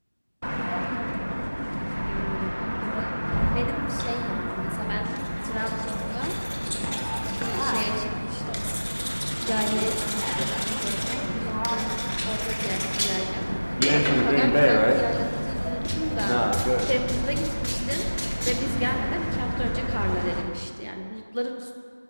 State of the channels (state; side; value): inverted; both; correlation -1.00